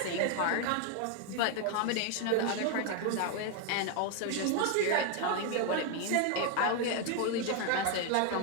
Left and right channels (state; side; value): different; both; correlation 0.01